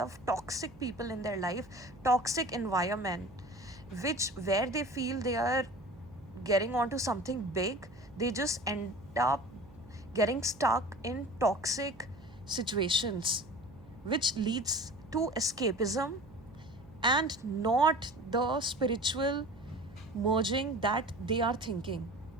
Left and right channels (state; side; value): noise; right; hum, 22 dB below the sound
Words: of toxic people in their life, toxic environment, which where they feel they are getting onto something big, they just end up getting stuck in toxic situations, which leads to escapism and not the spiritual merging that they are thinking.